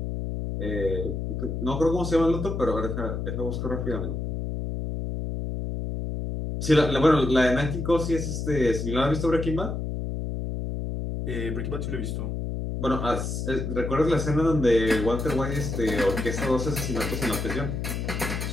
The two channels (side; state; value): left; noise; hum, 3 dB below the sound